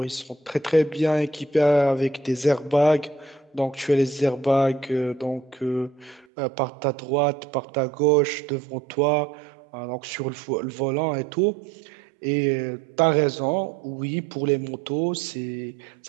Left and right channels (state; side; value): drops out; left; at 6.2 s